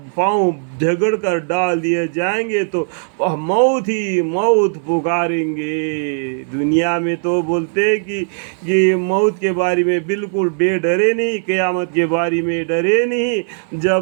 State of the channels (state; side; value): silent; left; 58 dB below the other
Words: پاؤں جھگڑ کر ڈال دیے جائیں گے تو وہ موت ہی موت پکاریں گے۔ دنیا میں تو بولتے ہیں کہ یہ موت کے بارے میں بالکل بے ڈرے نہیں، قیامت کے بارے میں ڈرے نہیں۔